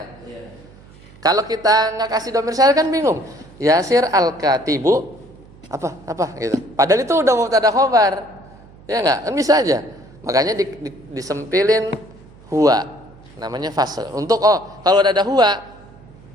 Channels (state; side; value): noise; right; hum, 23 dB below the sound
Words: Kalau kita nggak kasih domir sya'an kan bingung. Yasir al-katibu apa gitu. Padahal itu udah mubtada khobar. Ya enggak? Kan bisa aja. Makanya disempilin huwa. Namanya fasl. Untuk kalau ada huwa,